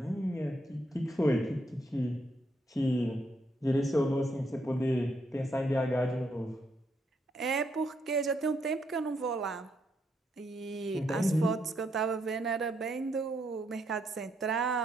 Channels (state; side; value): normal; both; correlation 0.76